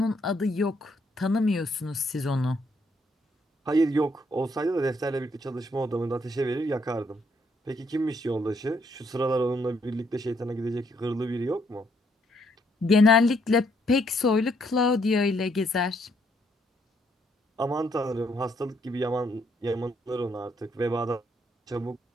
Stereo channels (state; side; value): normal; both; correlation 0.71